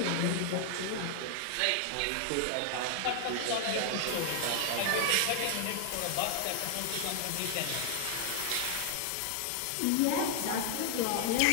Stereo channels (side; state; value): both; different; correlation 0.00